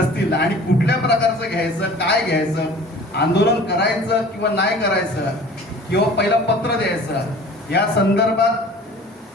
आणि कुठल्या प्रकारचं घ्यायचं, काय घ्यायचं, आंदोलन करायचं किंवा नाही करायचं, किंवा पहिलं पत्र द्यायचं, या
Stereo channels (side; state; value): both; normal; correlation 0.45